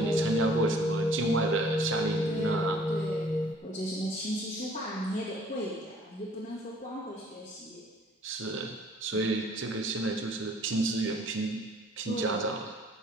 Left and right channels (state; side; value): normal; both; correlation 0.57